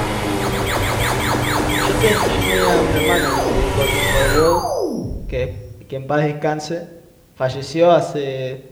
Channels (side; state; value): both; identical; correlation 1.00